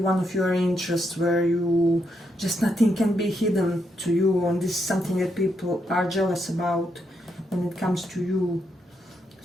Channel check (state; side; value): normal; both; correlation 0.80